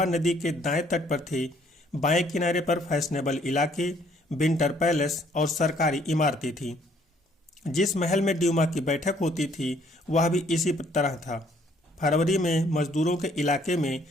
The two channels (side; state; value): both; normal; correlation 0.63